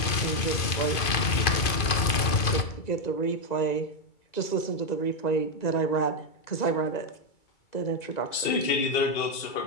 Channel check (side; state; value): right; late; 2.5 ms